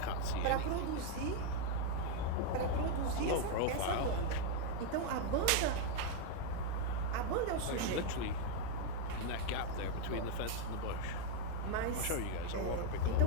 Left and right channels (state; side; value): different; both; correlation 0.00